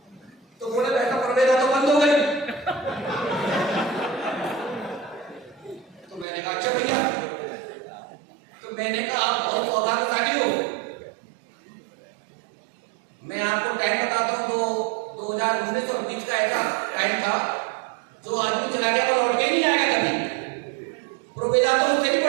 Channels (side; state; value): left; drops out; at 6.2 s